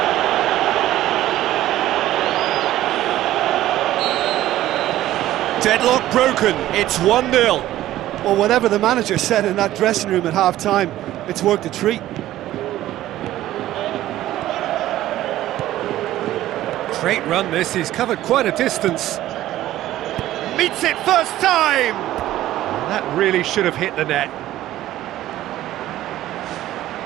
Deadlock broken, it's 1-0. Well, whatever the manager said in that dressing room at half-time, it's worked a treat. Great run this, he's covered quite a distance. Meets it first time! That really should have hit the net.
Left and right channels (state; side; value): quieter; left; 14.2 dB